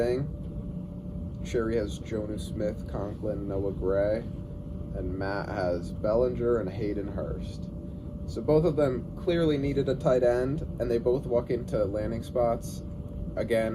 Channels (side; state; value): both; identical; correlation 1.00